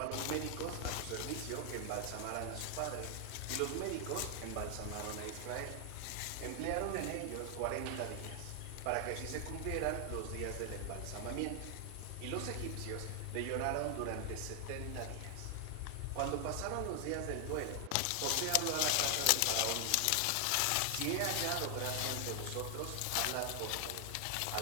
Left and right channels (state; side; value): different; both; correlation 0.00